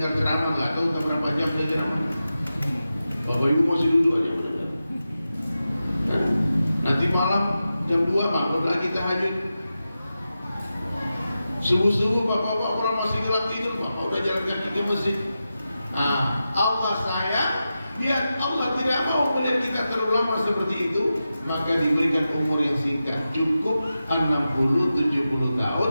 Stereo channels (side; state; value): both; inverted; correlation -0.92